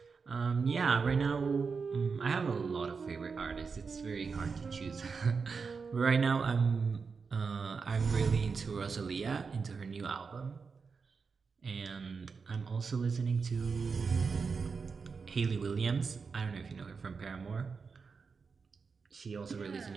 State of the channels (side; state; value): left; quieter; 5.2 dB